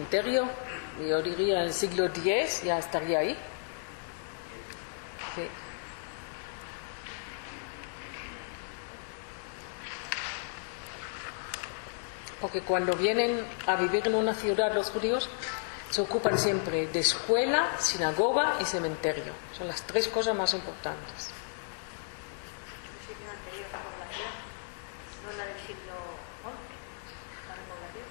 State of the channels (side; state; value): right; silent; digital silence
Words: yo diría en el siglo X ya estaría ahí. Sí. Porque cuando vienen a vivir en una ciudad los judíos, se ocupan siempre de escuela, sinagoga y cementerio. Son las 3 cosas más importantes.